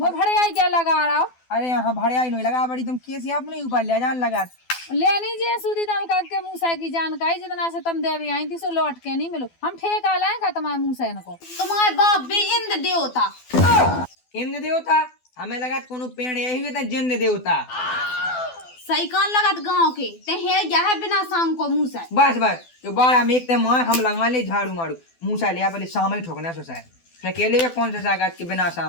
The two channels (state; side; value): late; right; 12 ms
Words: भड़े आई क्या लगा रहा हो अरे यहाँ भड़िया ही नहीं लगा बड़ी तुम कैसे अपने ऊपर ले जान लगा लेनी जे सुधी तम करके मूसा की जानकारी जितना से तुम देवी आई थी सो लौट के नहीं मिलो हम ठेका लाएगा तुम्हारे मूसा को तुम्हारे बाप भी इंद्र देवता इंद्र देवता हमें लगा कोनो पेड़ यही हुए था जिंद देवता सही कान लगत गांव के ते हे या है बिना सांग को मुंह से बस बस जो बार हम एक मार हम लगा ले झाड़ू मारू मूसा लिया पहले शाम ही ठोकना सो साहब अकेले में कौन सा सागत के बिना